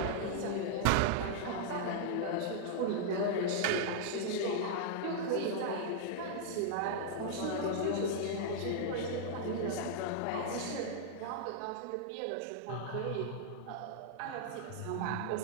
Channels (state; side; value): different; both; correlation -0.01